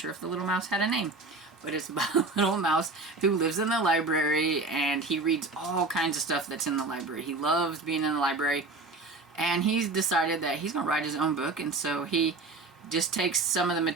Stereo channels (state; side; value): quieter; left; 3.4 dB